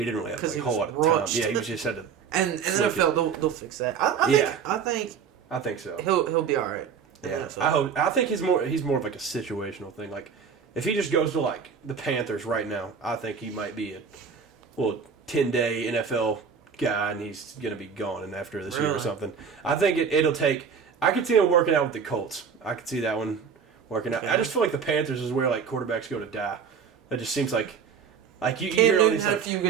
didn't really have like a whole lot of time. Yeah, he was just had to. And NFL, they'll fix that. I think so. He'll be all right. Yeah, I think he's more of like a situational thing. Like, if he just goes to like the Panthers right now, I think he might be a 10-day NFL guy, and he's gonna be gone and after this year or something. I think it'll take. I could see him working out with the Colts. I could see that one working out. I just feel like the Panthers is where like quarterbacks go to die. It just seems like you hear all these had a few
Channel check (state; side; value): quieter; left; 6.5 dB